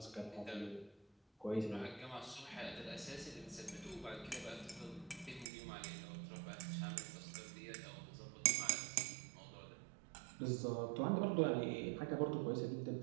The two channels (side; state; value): left; drops out; at 5.5 s